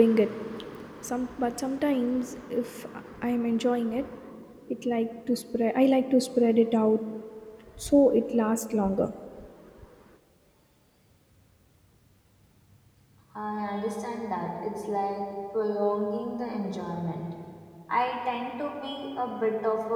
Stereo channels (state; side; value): identical; both; correlation 1.00